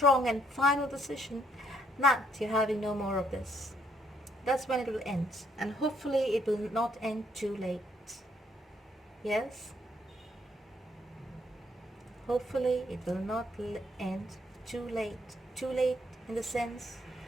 and final decision that you're having no more of this. That's when it will end. And hopefully it will not end too late. Yes? Hopefully it will not end too late. Too late in the sense,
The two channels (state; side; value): normal; both; correlation 0.70